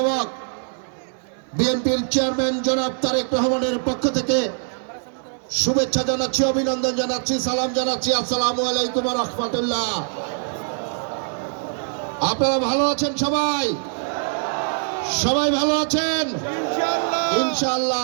বিএনপির চেয়ারম্যান জনাব তারেক রহমানের পক্ষ থেকে শুভেচ্ছা জানাচ্ছি, অভিনন্দন জানাচ্ছি, সালাম জানাচ্ছি। আসসালামু আলাইকুম ওয়া রাহমাতুল্লাহ। আপনারা ভালো আছেন? সবাই ভালো আছেন?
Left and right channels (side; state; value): left; silent; digital silence